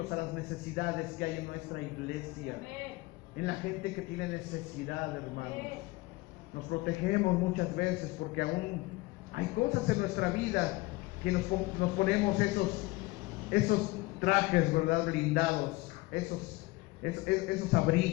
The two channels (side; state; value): right; quieter; 21.6 dB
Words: a las necesidades que hay en nuestra iglesia, en la gente que tiene necesidad, hermanos. Nos protegemos muchas veces porque aún hay cosas en nuestra vida que nos ponemos esos trajes, ¿verdad? Blindados, esos